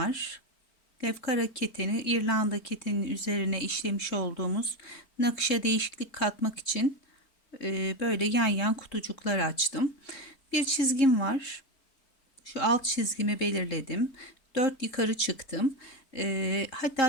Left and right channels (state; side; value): late; right; 3.7 ms